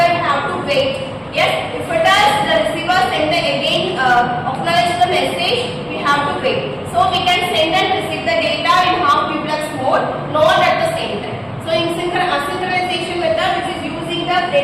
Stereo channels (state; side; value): identical; both; correlation 1.00